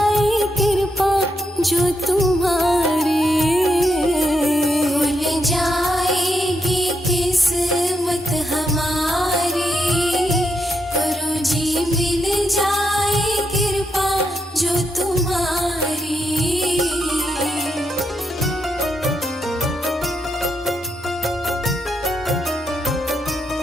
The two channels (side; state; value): both; normal; correlation 0.81